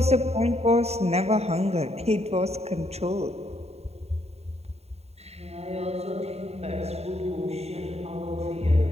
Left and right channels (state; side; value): late; left; 0.30 ms